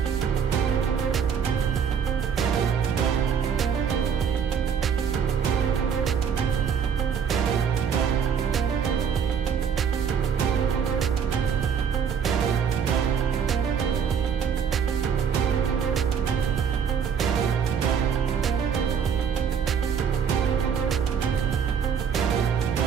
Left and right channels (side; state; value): left; quieter; 7.2 dB